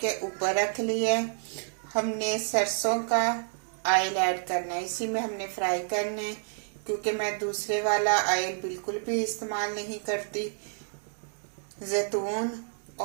ऊपर रख लिया है। हमने सरसों का ऑयल ऐड करना है, इसी में हमने फ्राई करना है, क्योंकि मैं दूसरे वाला ऑयल बिल्कुल भी इस्तेमाल नहीं करती। जैतून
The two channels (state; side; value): silent; left; digital silence